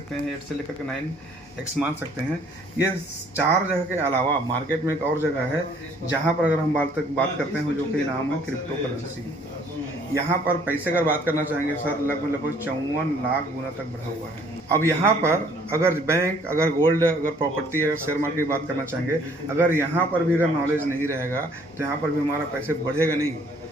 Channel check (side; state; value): both; normal; correlation 0.60